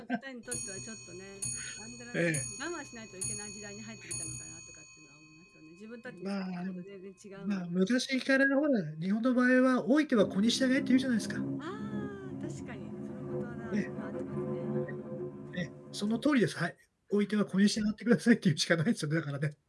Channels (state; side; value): identical; both; correlation 1.00